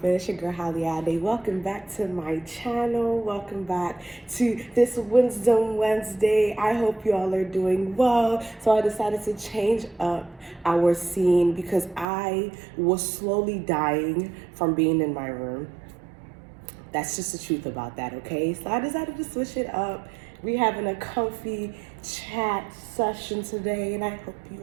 It's your girl Haliade. Welcome back to my channel. Welcome back to this Wisdom Wednesday. I hope you all are doing well. So I decided to change up our scene because I was slowly dying from being in my room. That's just the truth about that, okay? So I decided to switch it up. We're having a comfy chat session today, and I hope you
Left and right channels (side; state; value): left; drops out; at 12.1 s